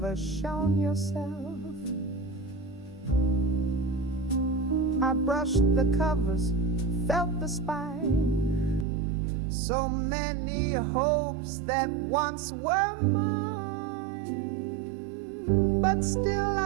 shown yourself. I brushed the covers, felt the spine, so many hopes that once were mine. But still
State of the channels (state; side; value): drops out; left; at 8.8 s